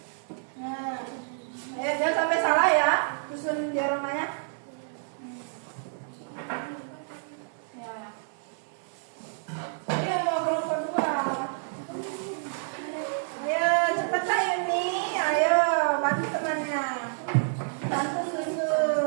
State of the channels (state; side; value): silent; left; digital silence